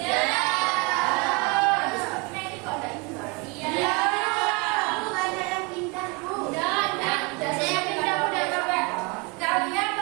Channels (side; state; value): left; quieter; 27.8 dB